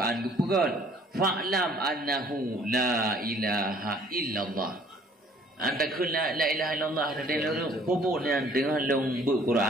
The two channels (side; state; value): both; normal; correlation 0.57